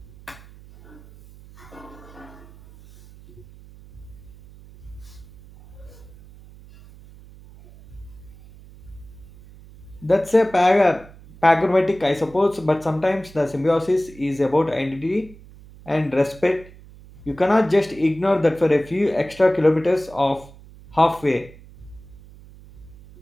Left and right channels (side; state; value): right; noise; hum, 21 dB below the sound